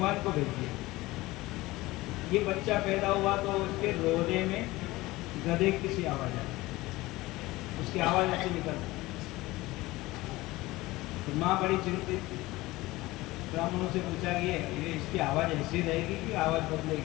को भेज दिया। ये बच्चा पैदा हुआ तो उसके रोने में गधे की सी आवाज आई, उसकी आवाज ऐसी निकल, तो माँ बड़ी चिंतित, ब्राह्मणों से पूछा कि ये इसकी आवाज ऐसी रहेगी कि आवाज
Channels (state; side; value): quieter; right; 19.4 dB